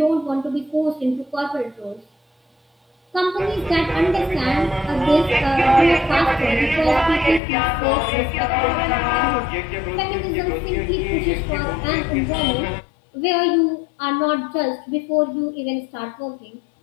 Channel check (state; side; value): drops out; right; at 7.4 s